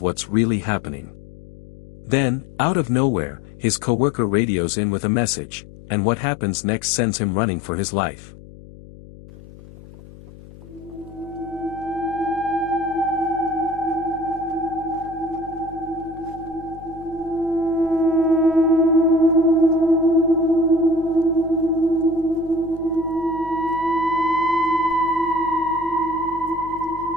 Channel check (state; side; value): noise; left; hum, 19 dB below the sound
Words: what's really happening. Then, out of nowhere, his coworker radios in with a message, and what happens next sends him running for his life.